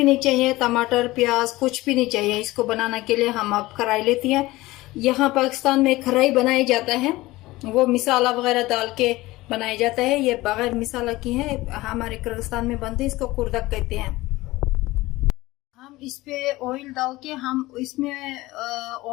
नहीं चाहिए। टमाटर प्याज कुछ भी नहीं चाहिए। इसको बनाने के लिए हम अब कढ़ाई लेती हैं। यहाँ पाकिस्तान में कढ़ाई बनाया जाता है, वो मिसाला वगैरह डाल के बनाया जाता है। ये बगैर मिसाला की है, हमारे किर्गिस्तान में बनते हैं। इसको कुर्दक कहते हैं। हम इस पे ऑयल डाल के, हम इसमें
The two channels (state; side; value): quieter; right; 19.1 dB